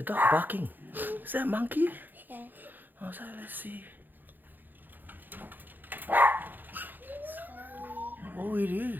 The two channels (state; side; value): late; left; 0.088 ms